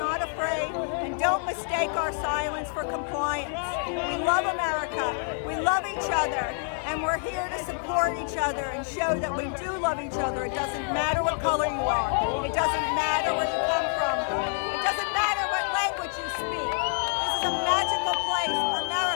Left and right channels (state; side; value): silent; right; 60 dB below the other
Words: afraid. And don't mistake our silence for compliance. We love America, we love each other, And we're here to support each other and show that we do love each other. It doesn't matter what color you are. It doesn't matter where you come from. It doesn't matter what language you speak. This is a magical place,